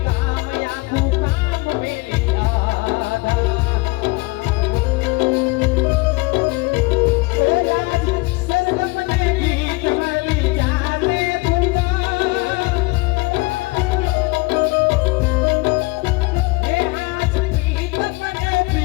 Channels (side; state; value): right; quieter; 24.2 dB